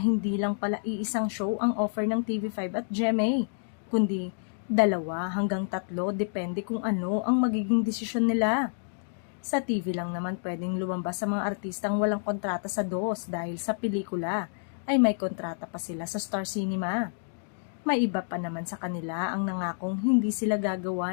lang pala iisang show ang offer ng TV5 at GMA, kundi 2 hanggang 3 depende kung ano ang magiging desisyon nila. Sa TV lang naman pwedeng lumabas sa mga artistang walang kontrata sa DOS dahil sa pelikula ay may kontrata pa sila sa Star Cinema. May iba pa naman sa kanila ang nangakong hindi sila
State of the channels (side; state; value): right; silent; digital silence